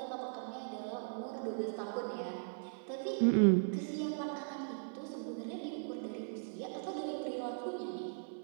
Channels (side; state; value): left; silent; 52 dB below the other